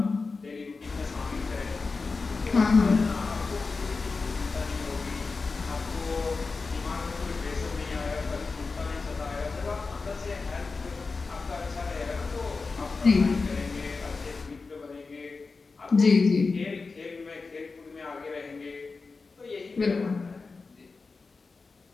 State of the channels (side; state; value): right; quieter; 4.2 dB